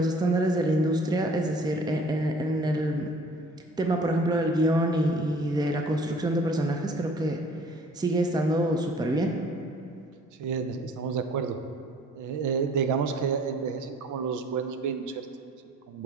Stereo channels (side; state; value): both; normal; correlation 0.53